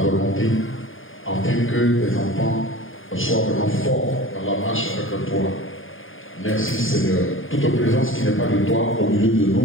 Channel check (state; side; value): late; right; 0.58 ms